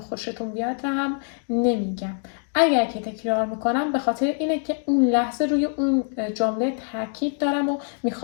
بیاد هم نمیگم. اگر که تکرار میکنم به خاطر اینه که اون لحظه روی اون جمله تاکید دارم و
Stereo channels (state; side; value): silent; right; 55 dB below the other